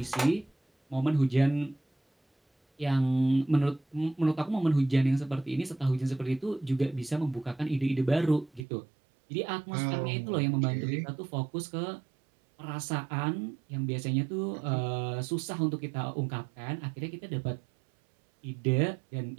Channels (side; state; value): left; drops out; at 8.7 s